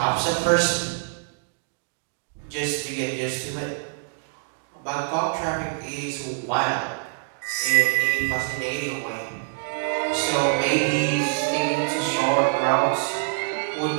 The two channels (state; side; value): silent; left; digital silence